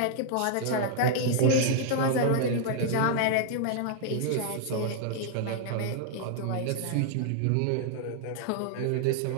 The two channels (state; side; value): different; both; correlation 0.00